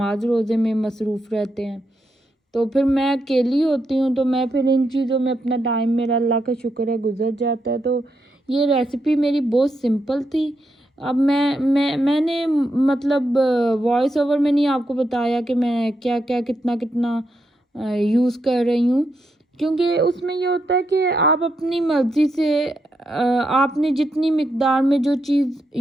روزے میں مصروف رہتے ہیں، تو پھر میں اکیلی ہوتی ہوں، تو میں پھر ان چیزوں میں اپنا ٹائم میرا اللہ کا شکر ہے گزر جاتا ہے، تو یہ ریسیپی میری بہت سمپل تھی۔ اب میں نے مطلب وائس اوور میں نہیں آپ کو بتایا کہ میں کیا کتنا یوز کر رہی ہوں، کیونکہ اس میں یہ ہوتا ہے کہ آپ اپنی مرضی سے آپ نے جتنی مقدار میں جو چیز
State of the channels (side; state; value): both; normal; correlation 0.82